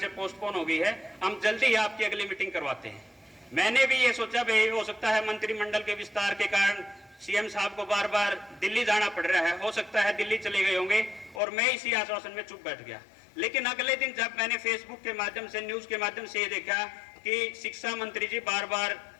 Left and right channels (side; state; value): right; drops out; at 11.4 s